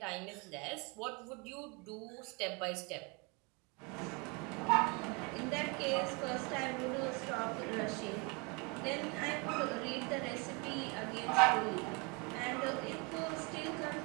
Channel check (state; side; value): quieter; left; 30.4 dB